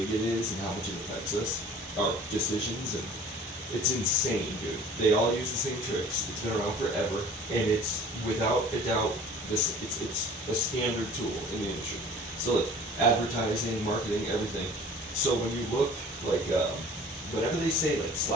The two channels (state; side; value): normal; both; correlation 0.47